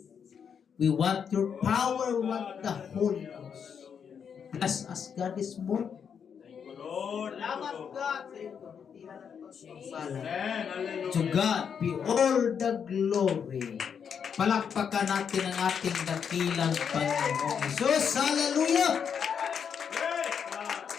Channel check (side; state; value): right; quieter; 7.2 dB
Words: We want your power, we want the Holy Ghost. Bless us, God, this morning. Thank you, Lord. Salamat, God, sa iyong kabutihan at pagpapala. Amen. Hallelujah. To God be all the glory. Palakpakan natin ang ating dakilang Panginoon Jesus. Hallelujah! Praise God.